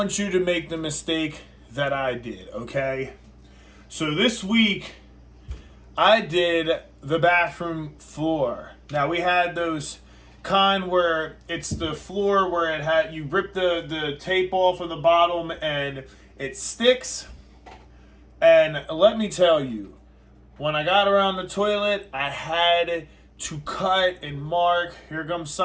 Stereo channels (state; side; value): identical; both; correlation 1.00